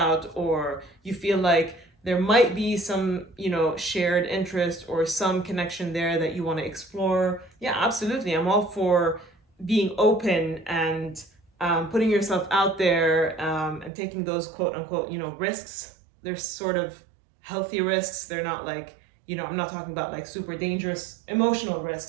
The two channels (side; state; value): left; drops out; at 13.9 s